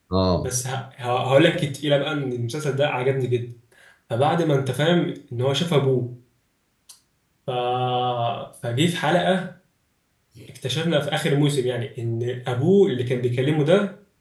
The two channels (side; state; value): both; identical; correlation 1.00